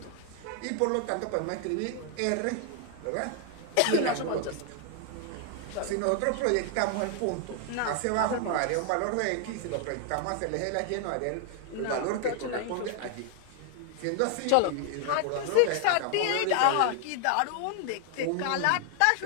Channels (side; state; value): both; different; correlation 0.00